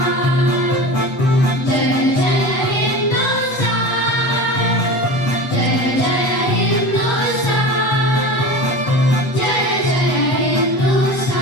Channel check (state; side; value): late; right; 8.2 ms